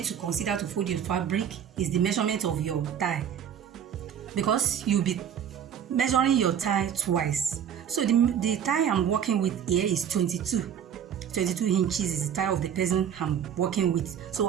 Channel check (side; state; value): left; quieter; 8.9 dB